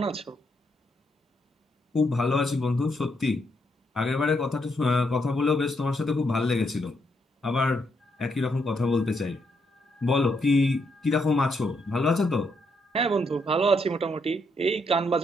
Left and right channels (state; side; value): normal; both; correlation 0.77